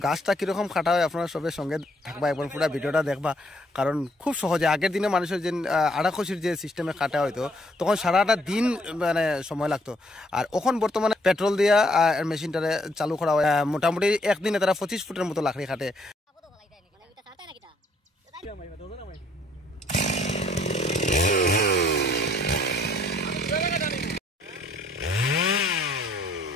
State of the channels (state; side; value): normal; both; correlation 0.67